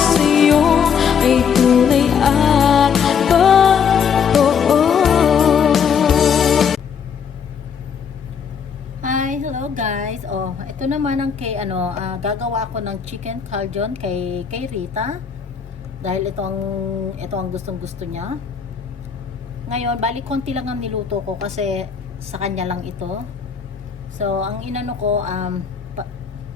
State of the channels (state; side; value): quieter; right; 7.0 dB